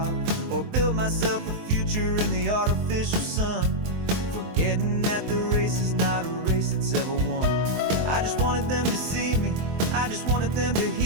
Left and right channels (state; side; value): late; left; 23 ms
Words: or build myself a future in the artificial sun, forgetting that the race is not a race that's ever won. I just wanted them to see me, I just wanted them to